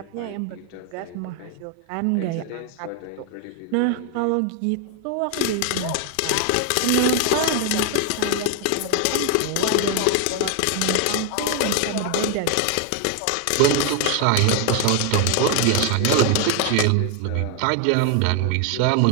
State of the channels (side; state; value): both; different; correlation 0.00